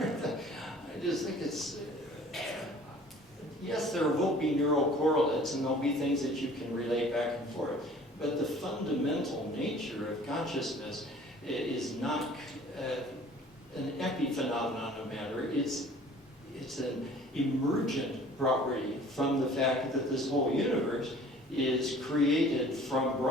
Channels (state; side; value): normal; both; correlation 0.50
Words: I just think it's, yes, there will be neural correlates, and there'll be things that you can relate back and forth, but the fundamental nature of consciousness is not an epiphenomenon of matter. It's an emergent property from the fact that this whole universe is created from